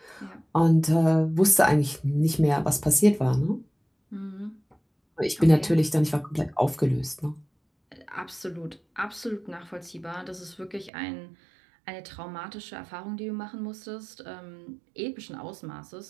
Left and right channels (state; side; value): drops out; left; at 10.9 s